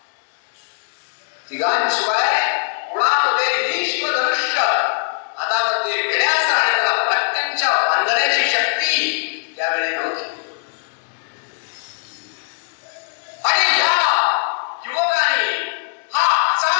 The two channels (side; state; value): right; silent; digital silence